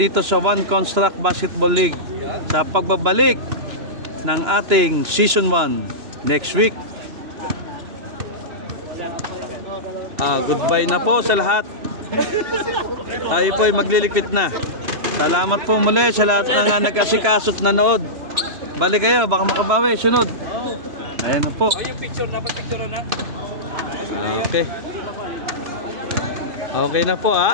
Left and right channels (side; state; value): left; late; 2.9 ms